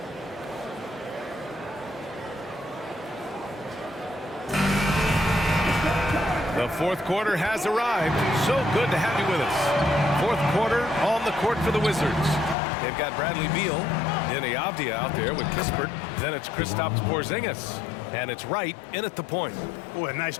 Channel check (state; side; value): drops out; right; at 12.6 s